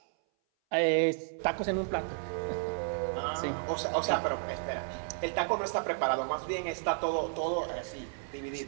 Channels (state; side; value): silent; left; 56 dB below the other